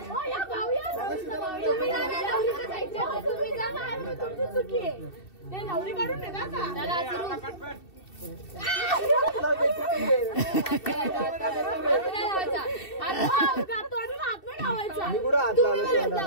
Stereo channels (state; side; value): late; right; 2.7 ms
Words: या भाऊ या तुम्ही जा ना, नवरीच्या साईडच्या. तुम्ही जा ना, तुमची चुकी आहे. ते नवरी काढून दे ना का? चला, सुरू.